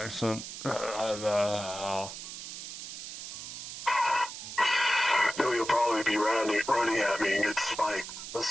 No, you'll probably be running at me and get spiked.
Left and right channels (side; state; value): right; noise; hiss, 9 dB below the sound